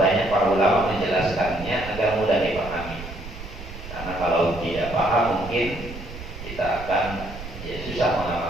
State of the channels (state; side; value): noise; right; rumble, 12 dB below the sound